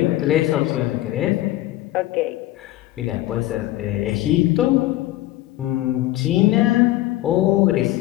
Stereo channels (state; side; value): quieter; right; 15.9 dB